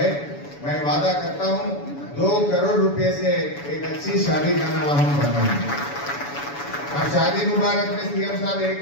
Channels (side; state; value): right; late; 7.0 ms